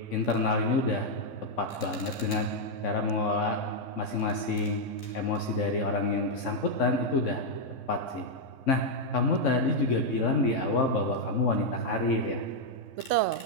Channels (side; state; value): right; late; 3.6 ms